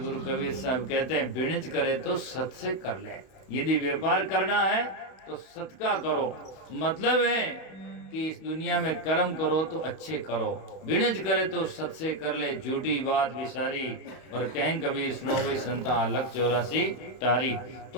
कबीर साहब कहते हैं बिणज करे तो सत से कर ले। यदि व्यापार करना है तो सत का करो, मतलब है कि इस दुनिया में कर्म करो तो अच्छे करो, बिणज करे तो सत से कर ले, झूठी बात विसारी। और कहीं कभी सुनो गई संता लक 84 तारीख, तो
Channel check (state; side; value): late; right; 31 ms